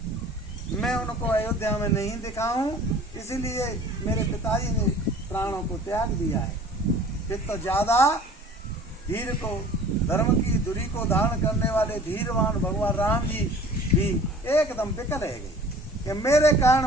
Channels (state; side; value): normal; both; correlation 0.47